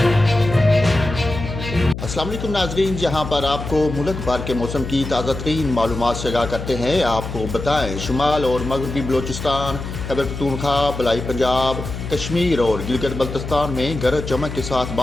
अस्सलाम वालेकुम नाजरीन, जहां पर आपको मुल्क भर के मौसम की ताज़ा तरीन मालूमात से आगाह करते हैं। आपको बताएं, शुमाल और मगरबी बलोचिस्तान, खैबर पख्तूनख्वा, बलाई पंजाब, कश्मीर और गिलगित बल्तिस्तान में गरज चमक के साथ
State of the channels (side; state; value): left; noise; hum, 7 dB below the sound